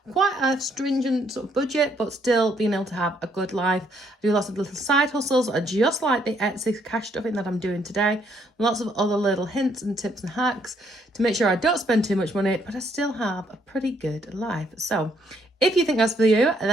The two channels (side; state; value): both; normal; correlation 0.69